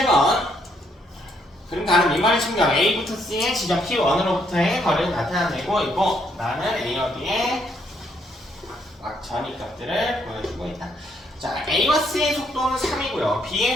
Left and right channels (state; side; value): normal; both; correlation 0.72